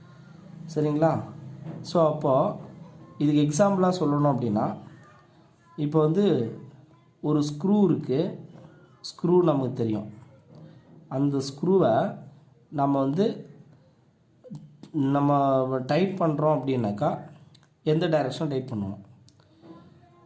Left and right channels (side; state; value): both; identical; correlation 1.00